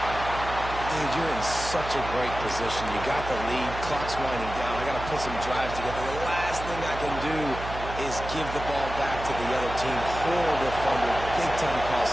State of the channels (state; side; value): noise; right; hum, 9 dB below the sound